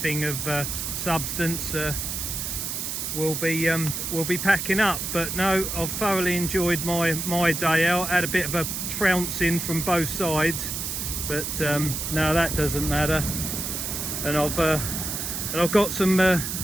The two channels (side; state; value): right; noise; hiss, 3 dB below the sound